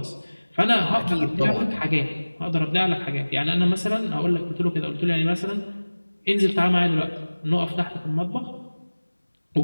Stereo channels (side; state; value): both; inverted; correlation -1.00